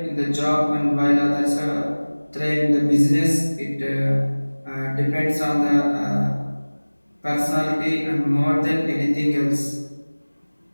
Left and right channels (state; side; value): inverted; both; correlation -1.00